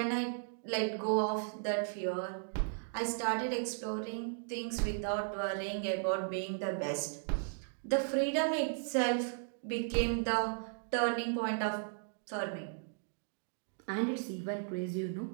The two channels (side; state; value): left; silent; digital silence